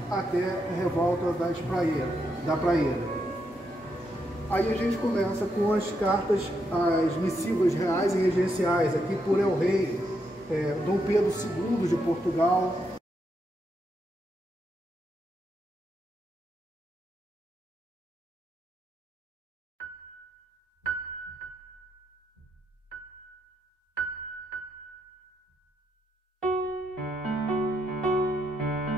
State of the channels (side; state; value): both; normal; correlation 0.80